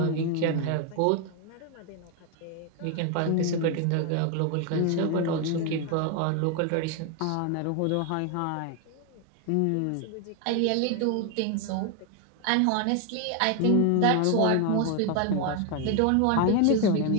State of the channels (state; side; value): different; both; correlation 0.01